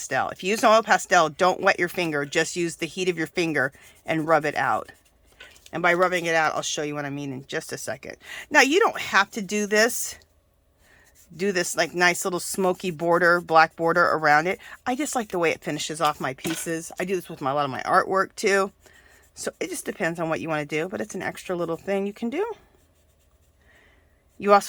If you use an oil pastel, don't wet your finger. Just use the heat of your finger and rub it out. And by rubbing it out, I'll show you what I mean in just a second. Now, you don't have to do this. Do this like nice little smoky border, black border around it. I just like the way it finishes off my pieces. I do this with a lot of my artwork too. So it just depends on what you want to do, but it's an extra little thing you can do. You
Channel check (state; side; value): identical; both; correlation 1.00